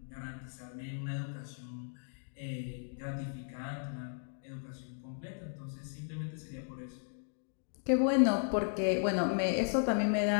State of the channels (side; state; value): right; silent; digital silence